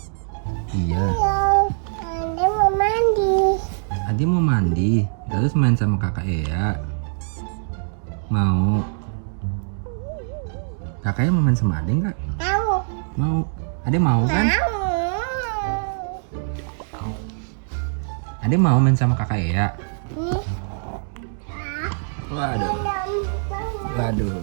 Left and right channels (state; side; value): silent; left; digital silence